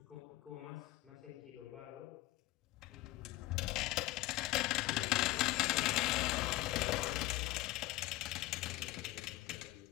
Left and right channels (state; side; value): quieter; right; 18.1 dB